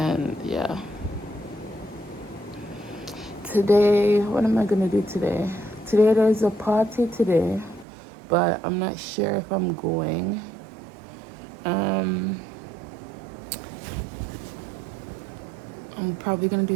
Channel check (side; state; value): left; drops out; at 7.9 s